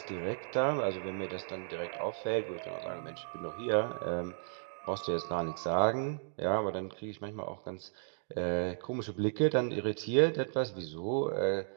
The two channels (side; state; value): left; silent; digital silence